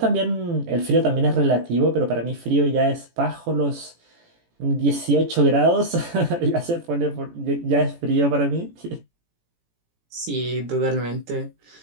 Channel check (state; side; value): late; left; 18 ms